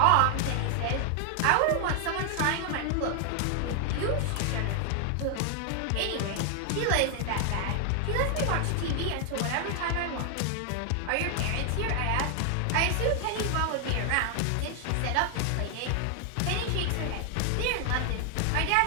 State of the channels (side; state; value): both; different; correlation 0.00